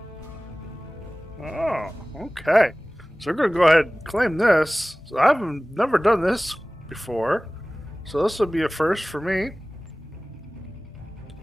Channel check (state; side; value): normal; both; correlation 0.98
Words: Oh, okay. So we're going to go ahead and claim this. So I've never done this before. So this will be a first for me.